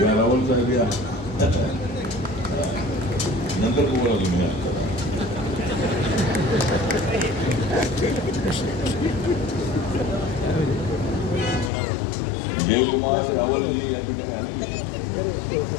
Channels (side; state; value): right; drops out; at 11.7 s